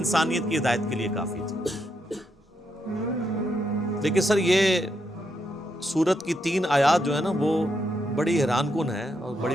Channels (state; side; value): normal; both; correlation 0.80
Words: کی ہدایت کے لیے کافی تھی۔ لیکن سر یہ سورت کی 3 آیات جو ہے نا وہ بڑی حیران کن ہے اور